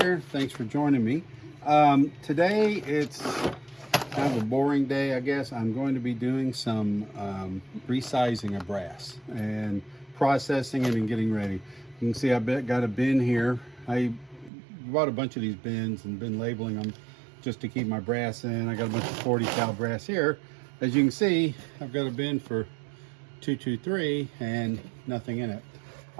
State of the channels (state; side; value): drops out; left; at 14.5 s